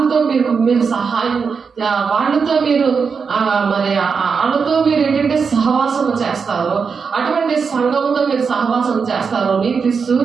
మీరు సహాయం, వాళ్ళతో మీరు మరి వాళ్ళతో మీరు ఏంటంటే సహవాసం చేస్తారు. అటువంటి సంఘంతో మీరు సహవాసం చేస్తారు. నీతి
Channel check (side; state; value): left; quieter; 5.6 dB